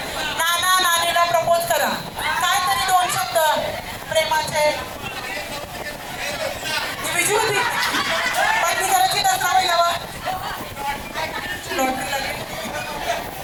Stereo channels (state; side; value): identical; both; correlation 1.00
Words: नानीला प्रपोज करा. काय तरी 2 शब्द प्रेमाचे. ती विजू होती पत्नी करायची दसरावी लावा. लॉटरी लागली.